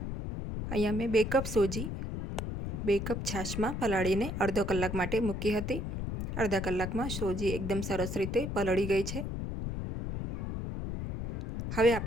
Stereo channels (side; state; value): left; noise; rumble, 4 dB below the sound